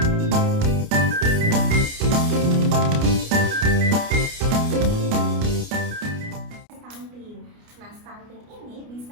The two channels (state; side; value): late; left; 29 ms